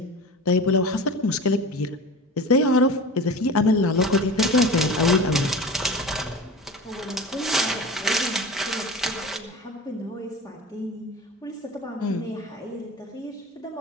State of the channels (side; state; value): both; normal; correlation 0.33